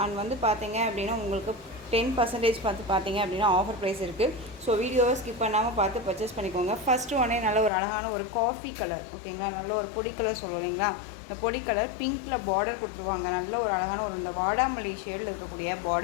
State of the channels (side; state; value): right; drops out; at 7.7 s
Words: அண்ட் வந்து பார்த்தீங்க அப்படின்னா உங்களுக்கு 10% பார்த்தீங்க அப்படின்னா ஆஃபர் ப்ரைஸ் இருக்குது. ஸோ வீடியோவை ஸ்கிப் பண்ணாமல் பார்த்து பர்ச்சேஸ் பண்ணிக்கோங்க. ஃபஸ்ட்டு உடனே நல்ல ஒரு அழகான ஒரு காஃபி கலர், ஓகேங்களா, நல்ல ஒரு பொடி கலர் சொல்லுவோம் இல்லைங்களா, இந்த பொடி கலர் பிங்க்கில் பார்டர் கொடுத்துருவாங்க. நல்ல ஒரு அழகான ஒரு இந்த வாடாமல்லி ஷேடில் இருக்கக்கூடிய